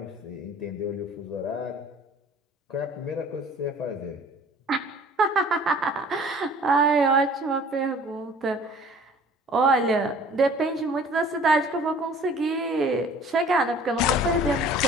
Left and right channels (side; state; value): both; normal; correlation 0.49